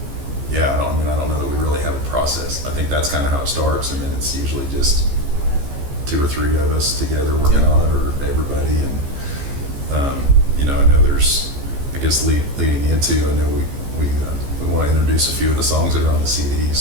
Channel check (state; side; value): late; left; 15 ms